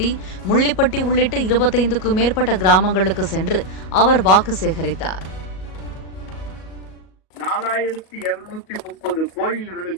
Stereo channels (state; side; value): late; right; 38 ms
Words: முள்ளிப்பட்டி உள்ளிட்ட 25க்கும் மேற்பட்ட கிராமங்களுக்கு சென்று அவர் வாக்கு சேகரித்தார். 4230